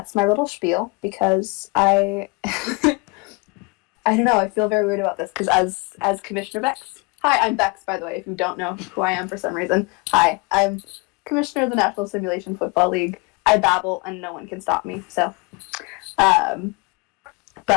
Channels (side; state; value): right; quieter; 29.0 dB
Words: my little spiel because I don't know, I feel very weird about this because as Commissioner Bex. Hi, I'm Bex, by the way, if you don't know who I am for some reason. Hi, I'm Commissioner of the National Simulation Football League. I babble and no one can stop me, so.